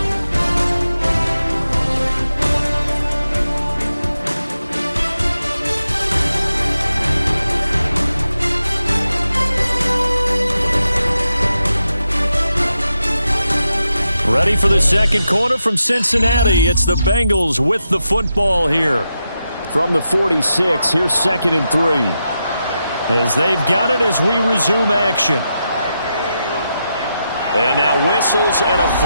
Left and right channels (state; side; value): inverted; both; correlation -0.87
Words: Ready for the second quarter from Cincinnati. It's the Bengals with the football here. From the 46, here's 2nd and 3. As they've got it as we resume action. And now whistles and a